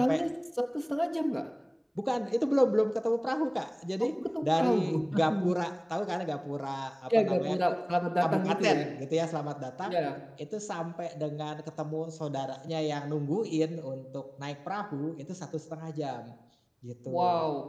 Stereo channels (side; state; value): both; identical; correlation 1.00